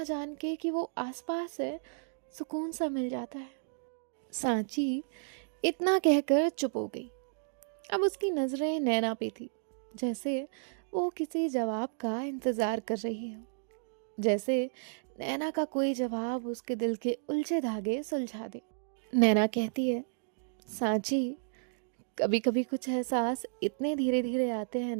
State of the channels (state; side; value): silent; left; digital silence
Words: जान के कि वो आसपास है, सुकून सा मिल जाता है। सांची इतना कहकर चुप हो गई। अब उसकी नज़रें नैना पे थी, जैसे वो किसी जवाब का इंतज़ार कर रही हो। जैसे नैना का कोई जवाब उसके दिल के उलझे धागे सुलझा दे। नैना कहती है, सांची, कभी कभी कुछ एहसास इतने धीरे धीरे आते हैं